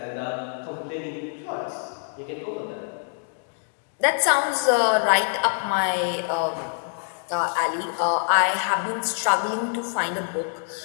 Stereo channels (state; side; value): silent; right; digital silence